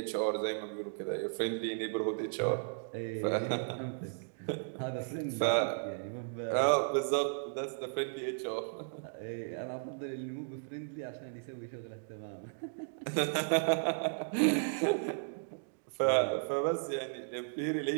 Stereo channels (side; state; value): left; silent; digital silence